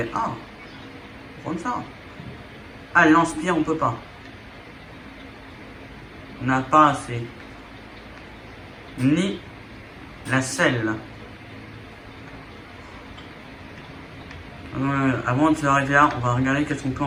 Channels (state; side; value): identical; both; correlation 1.00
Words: Ah, on va prendre ça. Ah, le lance-pierre, on peut pas. On n'a pas assez. Ni la selle. Avant de s'arrêter là, on va regarder qu'est-ce qu'on peut